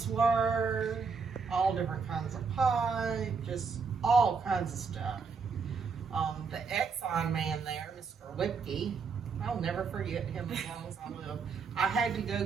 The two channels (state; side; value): quieter; left; 5.3 dB